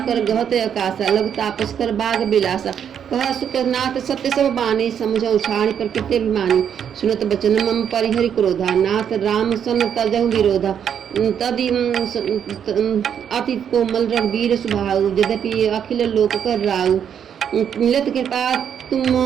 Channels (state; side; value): quieter; left; 8.4 dB